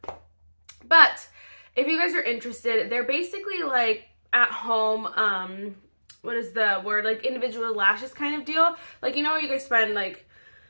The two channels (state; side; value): inverted; both; correlation -1.00